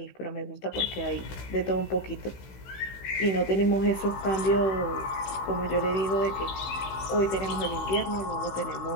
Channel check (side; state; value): right; late; 16 ms